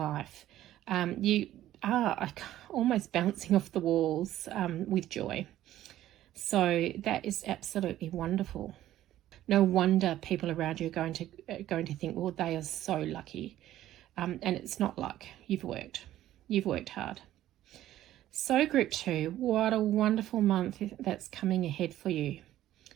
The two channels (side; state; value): left; quieter; 13.4 dB